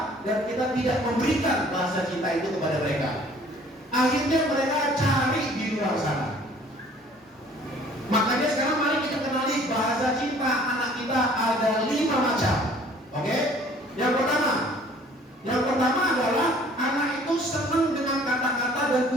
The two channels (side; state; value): both; normal; correlation 0.54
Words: dan kita tidak memberikan bahasa cinta itu kepada mereka. Akhirnya mereka cari di luar sana. Makanya sekarang mari kita kenali bahasa cinta anak kita ada 5 macam. Oke? Yang pertama adalah anak itu senang dengan kata-kata dan